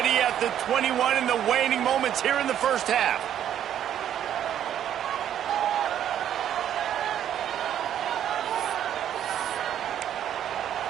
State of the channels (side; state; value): left; quieter; 10.3 dB